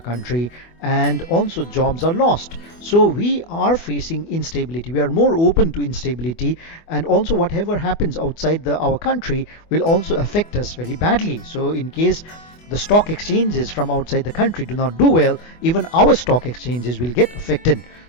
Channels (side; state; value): right; late; 24 ms